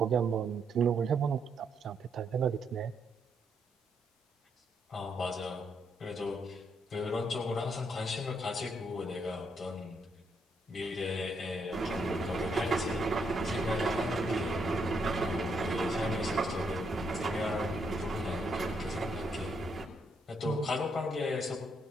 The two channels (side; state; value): both; normal; correlation 0.76